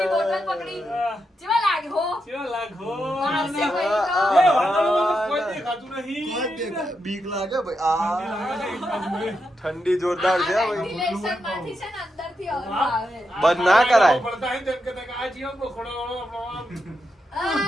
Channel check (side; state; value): both; normal; correlation 0.85